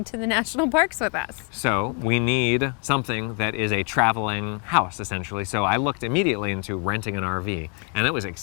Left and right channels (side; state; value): right; quieter; 38.9 dB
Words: to the national parks with us. So we need something that is a traveling house, essentially. So I looked immediately into renting an RV, and it was